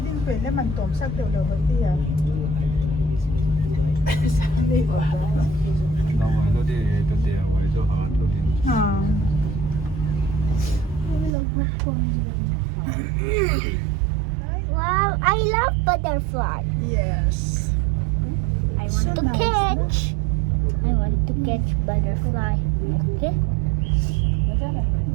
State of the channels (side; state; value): left; drops out; at 11.4 s